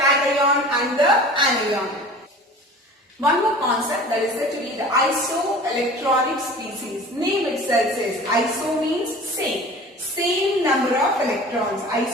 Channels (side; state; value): both; normal; correlation 0.41